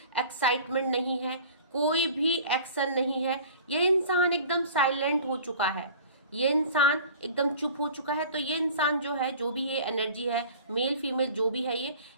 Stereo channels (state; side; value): inverted; both; correlation -0.44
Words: एक्साइटमेंट नहीं है, कोई भी एक्शन नहीं है। ये इंसान एकदम साइलेंट हो चुका है, ये इंसान एकदम चुप हो चुका है। तो ये इंसान जो है, जो भी ये एनर्जी है, मेल फीमेल जो भी है, ये